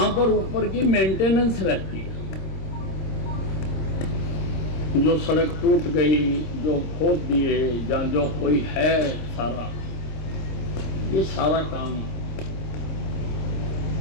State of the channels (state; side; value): late; right; 26 ms